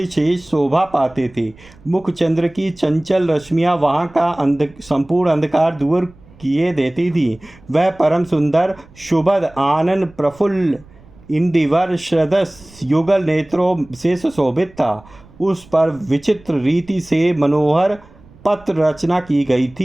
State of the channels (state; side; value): noise; right; rumble, 25 dB below the sound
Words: शेष शोभा पाते थे। मुख चंद्र की चंचल रश्मियाँ वहाँ का संपूर्ण अंधकार दूर किए देती थी। वह परम सुंदर शुभद आनंद प्रफुल्ल इंदिवर श्रदस युगल नेत्रों से सुशोभित था। उस पर विचित्र रीति से मनोहर पत्र रचना की गई